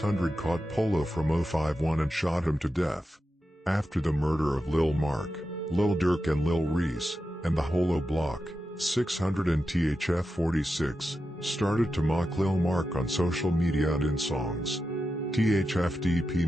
caught Polo from 051 and shot him to death. After the murder of Lil Marc, Lil Durk and Lil Reese, and the Holo Block, 600 and THF 46, started to mock Lil Marc on social media and in songs. THFDP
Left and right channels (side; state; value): both; normal; correlation 0.90